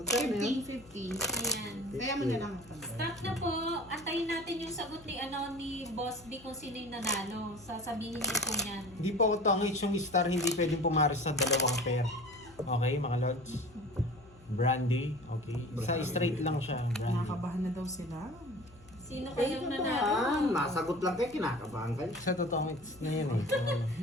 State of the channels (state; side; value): noise; left; hum, 23 dB below the sound